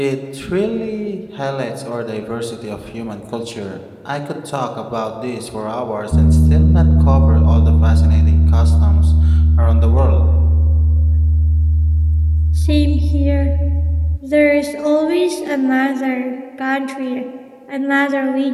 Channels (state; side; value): identical; both; correlation 1.00